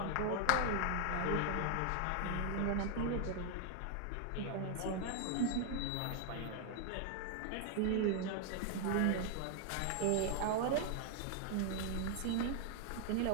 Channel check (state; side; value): different; both; correlation 0.00